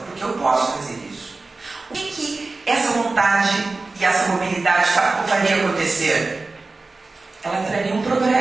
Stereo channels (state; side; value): quieter; left; 3.5 dB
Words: porque eu posso fazer isso. O que essa vontade e essa mobilidade faria acontecer? Ela traria um